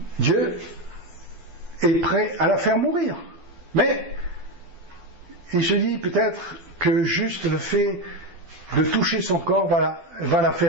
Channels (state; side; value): late; left; 12 ms